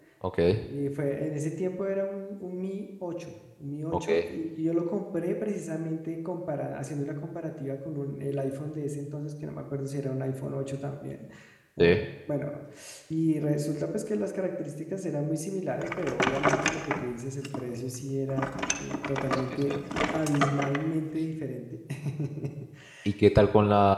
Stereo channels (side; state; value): both; identical; correlation 1.00